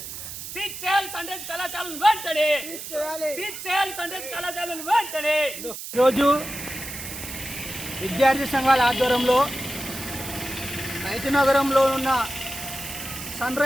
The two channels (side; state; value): right; noise; hiss, 9 dB below the sound